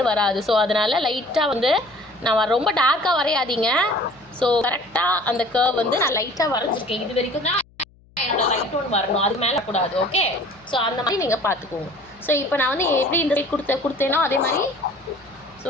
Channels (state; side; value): noise; left; hum, 29 dB below the sound